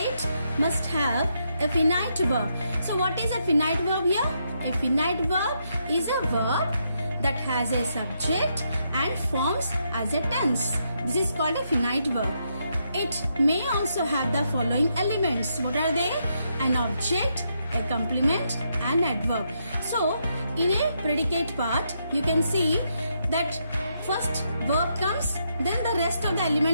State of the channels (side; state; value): both; inverted; correlation -0.79